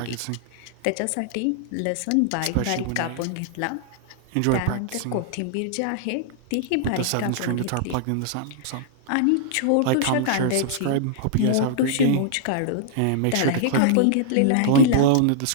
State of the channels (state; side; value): different; both; correlation -0.01